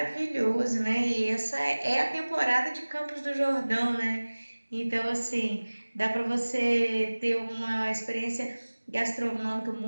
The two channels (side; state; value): both; inverted; correlation -1.00